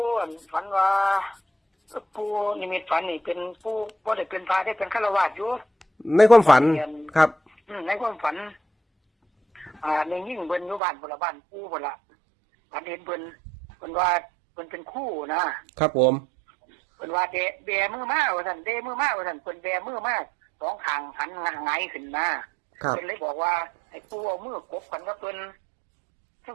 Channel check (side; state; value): left; drops out; at 10.8 s